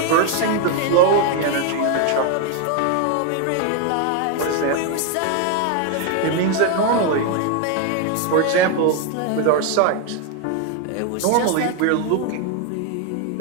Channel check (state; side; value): different; both; correlation 0.01